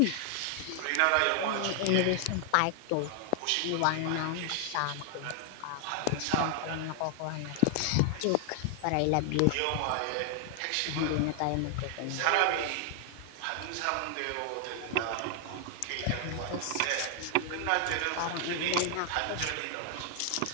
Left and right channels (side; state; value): both; different; correlation 0.00